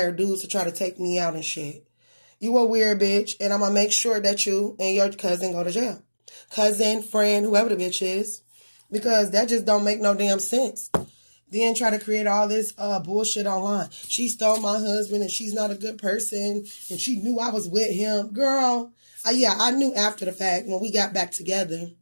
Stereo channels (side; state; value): both; inverted; correlation -1.00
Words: dudes to try to take me out and shit. You a weird bitch, and I'm going to make sure that you and your cousin go to jail. Cousin, friend, whoever the bitch is. Because that just don't make no damn sense. Then try to create all this bullshit online. She stole my husband, and she's not a good person, and she knew I was with him. Girl, yeah, I knew after the fact when we got back together.